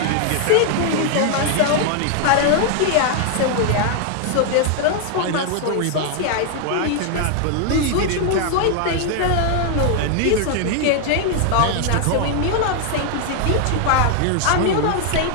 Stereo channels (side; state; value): both; different; correlation 0.00